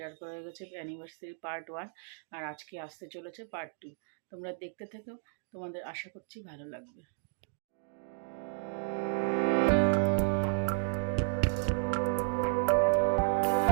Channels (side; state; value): left; silent; digital silence